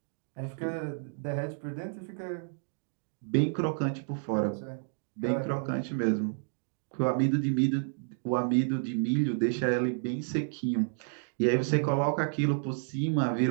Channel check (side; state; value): left; silent; digital silence